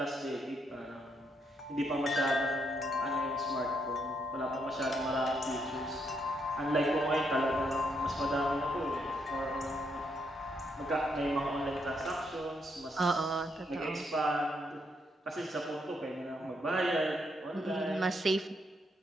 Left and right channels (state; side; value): normal; both; correlation 0.76